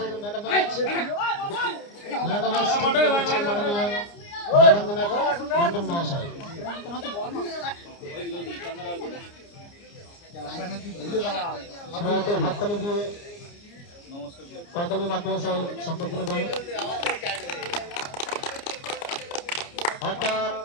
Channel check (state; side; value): late; right; 29 ms